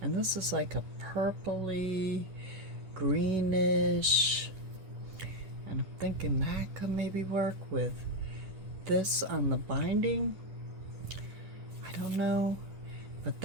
And this is like a purpley, greenish, and I'm thinking that could maybe work with this on the binding. I don't know. But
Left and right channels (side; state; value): left; late; 10 ms